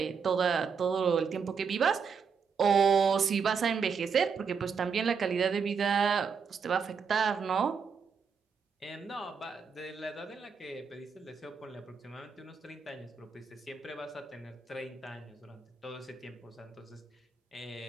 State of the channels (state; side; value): quieter; left; 5.9 dB